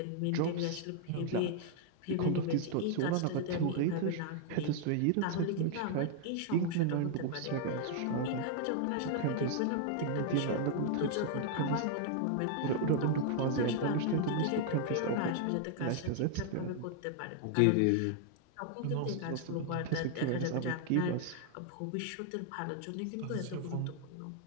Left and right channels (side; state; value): both; different; correlation 0.00